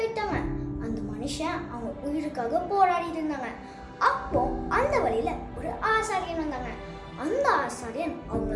அந்த மனுஷன் அவங்க உயிருக்காக போராடி இருந்தாங்க. அப்போ அந்த வழியில ஒரு ஆசாரியன் வந்தாங்க. அந்த ஆசாரியன்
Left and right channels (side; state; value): both; identical; correlation 1.00